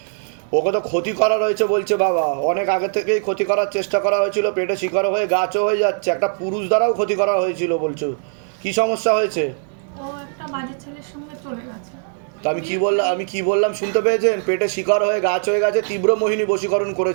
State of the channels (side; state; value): left; silent; digital silence